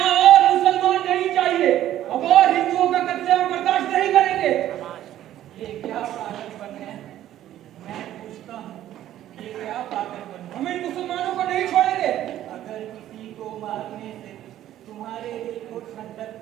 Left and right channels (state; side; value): quieter; left; 12.6 dB